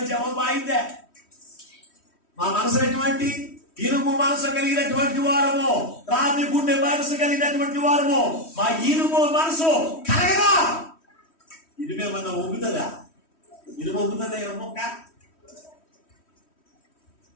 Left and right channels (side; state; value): right; late; 3.1 ms